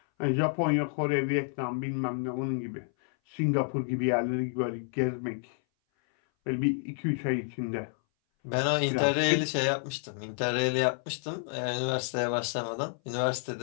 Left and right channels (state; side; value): silent; right; 58 dB below the other